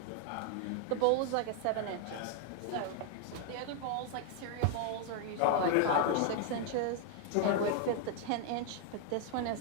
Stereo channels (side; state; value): both; different; correlation 0.00